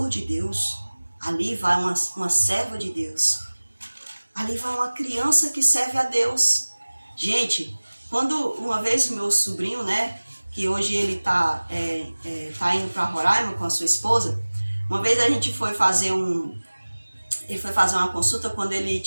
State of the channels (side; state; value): both; inverted; correlation -1.00